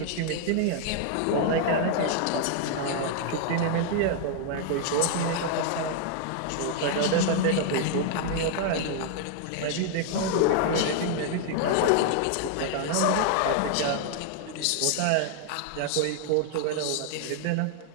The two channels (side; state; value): both; different; correlation 0.00